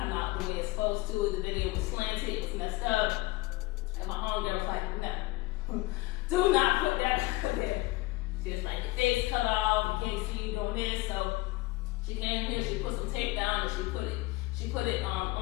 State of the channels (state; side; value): quieter; right; 20.3 dB